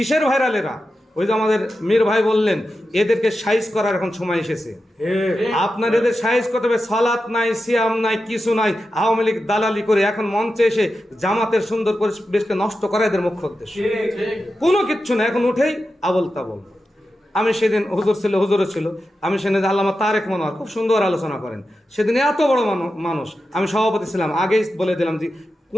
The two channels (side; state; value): both; normal; correlation 0.91